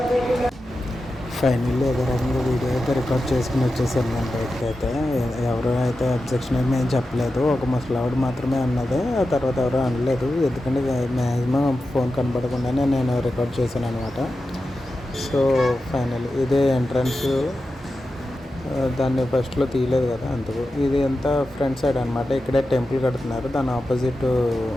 ఫైనల్లీ ఏదో రకంగా వీడియో అయితే రికార్డ్ చేసుకుని వచ్చేసాను నేను బయటకు. అయితే ఎవరు అయితే అబ్జెక్షన్ ఏమి ఏం చెప్పలేదు. ఒక ముసలావిడ మాత్రమే అన్నది, ఆ తర్వాత ఎవరో అనలేదు. ఎందుకంటే మ్యాక్సిమం ఫోన్ కనపడకుండానే నేను రికార్డ్ చేశాను అనమాట. సో ఫైనల్లీ ఇదే ఎంట్రన్స్. దాన్ని ఫస్ట్లో తీయలేదు కదా అందుకు. ఇది అంతా ఫ్రంట్ సైడ్ అనమాట. ఇక్కడే టెంపుల్ కడుతున్నారు. దాని ఆపోజిట్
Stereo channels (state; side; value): normal; both; correlation 0.91